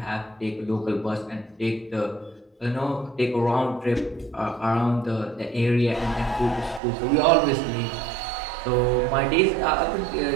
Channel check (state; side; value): drops out; left; at 6.8 s